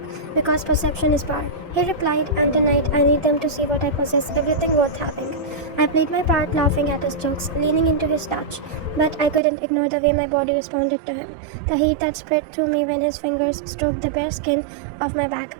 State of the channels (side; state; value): left; drops out; at 9.4 s